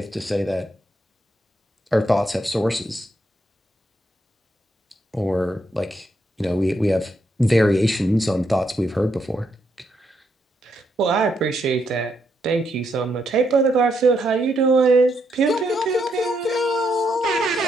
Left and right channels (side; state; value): both; normal; correlation 0.78